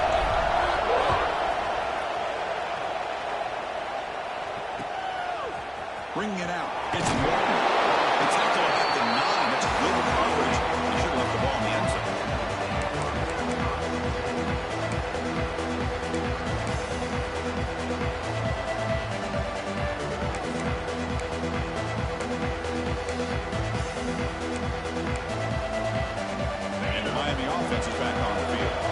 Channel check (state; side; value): identical; both; correlation 1.00